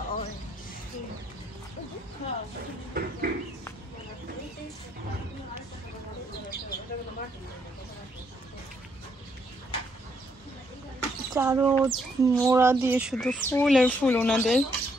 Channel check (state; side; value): normal; both; correlation 0.73